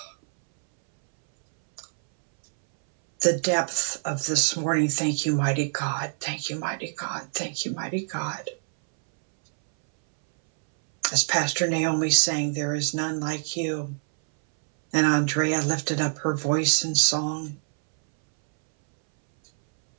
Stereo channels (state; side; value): silent; left; 61 dB below the other